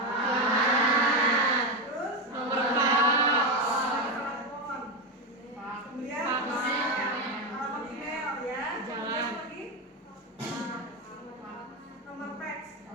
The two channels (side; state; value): both; normal; correlation 0.12